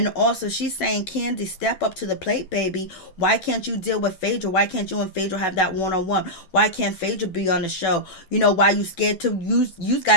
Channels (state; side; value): late; right; 11 ms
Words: also she's saying, Kandi, step up to the plate, baby. Why can't you deal with Phaedra? Why can't you and Phaedra have that one-on-one? Why can't Phaedra be on the show? Why you scared to use? You